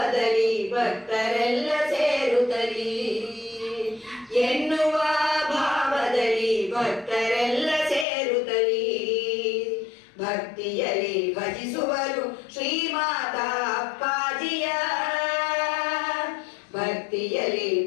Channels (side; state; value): right; drops out; at 8.1 s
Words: ಭಕ್ತರೆಲ್ಲ ಸೇರುತ್ತಲಿ ಎನ್ನುವ ಭಾವದಲ್ಲಿ ಭಕ್ತರೆಲ್ಲ ಸೇರುತ್ತಲಿ ಭಕ್ತಿಯಲ್ಲಿ ಭಜಿಸುವರು ಶ್ರೀಮಾತಾ ಅಪ್ಪಾಜಿಯ ಭಕ್ತಿಯಲ್ಲಿ